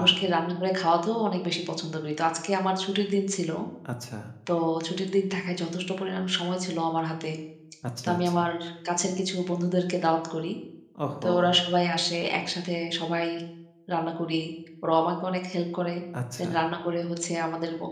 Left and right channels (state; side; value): identical; both; correlation 1.00